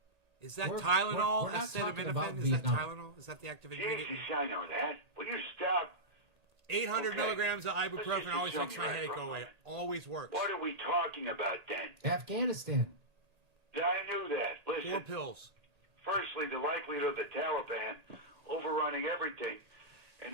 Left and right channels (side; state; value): left; late; 1.8 ms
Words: Is that we're Tylenol? not talking about Acetaminophen? Is that Vietnam. Tylenol? Is that the active ingredient? Jesus, I know that. Will you stop? 800 Okay. milligrams of Let's ibuprofen just always assume makes my you're right headache for a go away. moment. Always works. What are we talking about then? Afghanistan. I knew that. Listen. 4 pills. Firstly, the likelihood of the Taliban overrunning everything